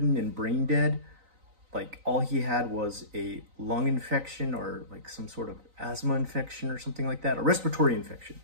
and brain dead. Like all he had was a lung infection or like some sort of asthma infection or something like that, a respiratory infection.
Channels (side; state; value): left; late; 3.9 ms